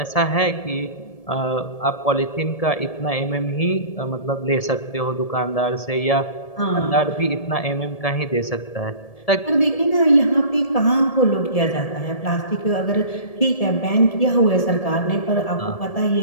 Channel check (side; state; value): right; late; 1.7 ms